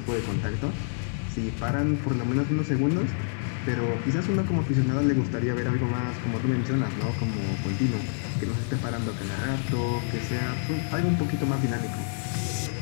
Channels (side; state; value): right; silent; digital silence